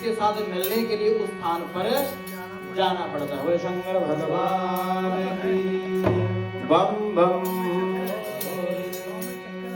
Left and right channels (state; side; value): identical; both; correlation 1.00